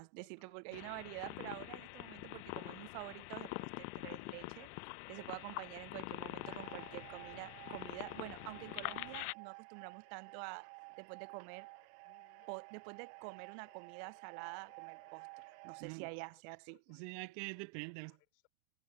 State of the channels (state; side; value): different; both; correlation 0.00